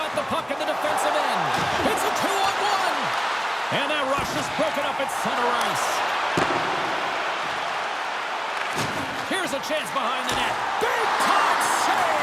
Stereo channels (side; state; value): both; identical; correlation 1.00